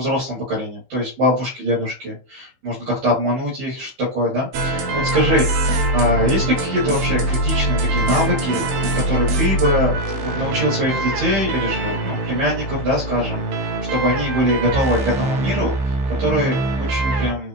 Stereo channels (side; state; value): left; late; 15 ms